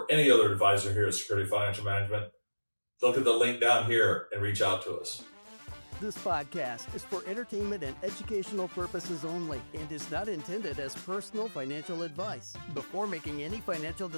any other advisor here at Security Financial Management, look at the link down here and reach out to us. This podcast is for entertainment and educational purposes only and is not intended as personal financial advice. Before making any financial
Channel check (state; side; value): inverted; both; correlation -1.00